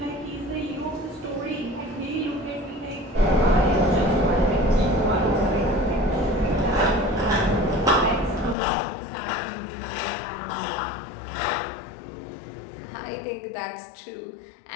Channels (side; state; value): right; drops out; at 8.6 s